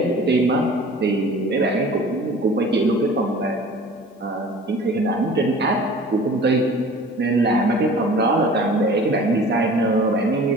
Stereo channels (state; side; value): normal; both; correlation 0.44